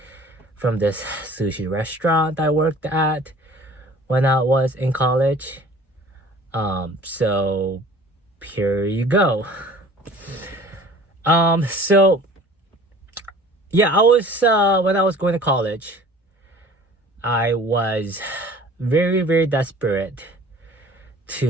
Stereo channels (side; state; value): both; normal; correlation 0.47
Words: from this sushi restaurant I worked at when I was in college. So here you go. So yeah, I was when I was going to college, I was very desperate